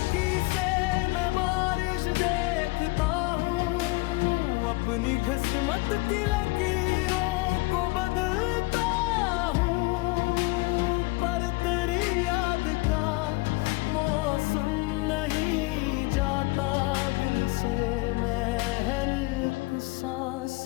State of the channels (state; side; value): quieter; right; 23.9 dB